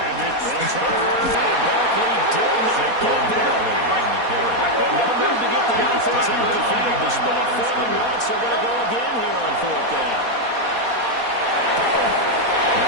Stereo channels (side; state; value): left; late; 4.2 ms